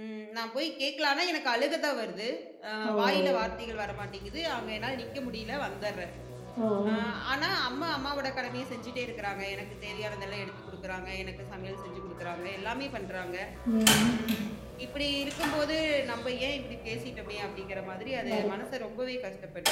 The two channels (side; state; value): both; identical; correlation 1.00